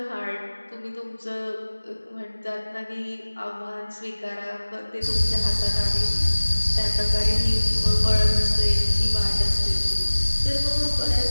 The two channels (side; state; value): both; inverted; correlation -1.00